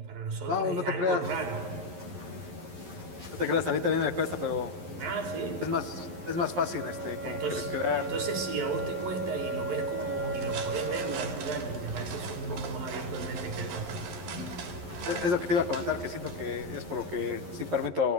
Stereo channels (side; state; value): left; late; 11 ms